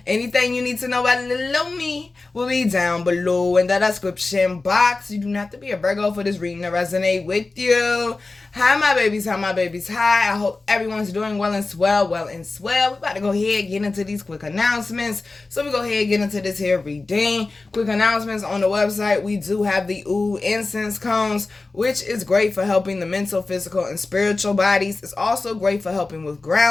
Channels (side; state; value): right; quieter; 3.5 dB